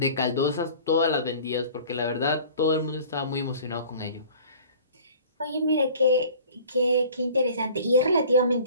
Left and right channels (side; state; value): both; inverted; correlation -0.46